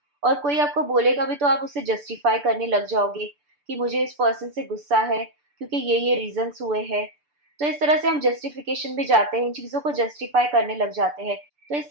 और कोई आपको बोलेगा भी तो आप उसे जस्टिफाई करने लग जाओगे कि मुझे इस पर्सन से गुस्सा है क्योंकि ये रीजंस हुए हैं। तो इस तरह से हम जस्टिफिकेशन भी जाते हैं, इन चीज़ों को जस्टिफाई करने लग जाते हैं। तो इस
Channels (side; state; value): left; late; 6.9 ms